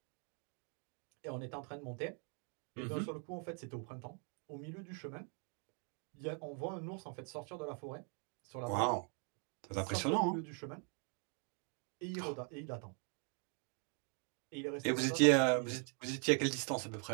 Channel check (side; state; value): left; quieter; 39.8 dB